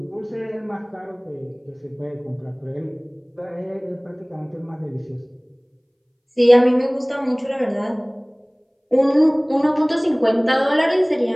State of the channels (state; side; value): identical; both; correlation 1.00